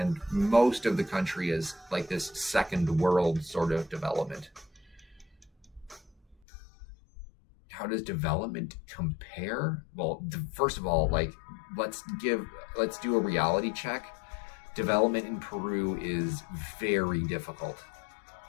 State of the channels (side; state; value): right; drops out; at 6.4 s